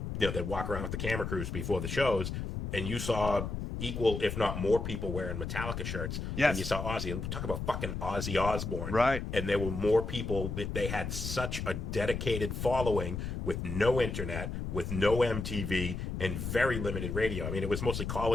walk around with the camera crews before the shows, and you saw equal, if not more, people wearing Metallica shirts Yes. than you saw Ozzy. And talk about fucking Ozzy Osbourne. Right. And there were more people. They had such a dedicated following with no internet, with no MTV, and very limited radio. I mean, it was mostly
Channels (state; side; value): noise; left; rumble, 4 dB below the sound